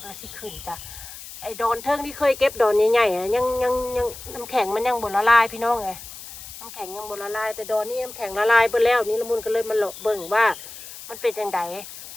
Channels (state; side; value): noise; left; hiss, 14 dB below the sound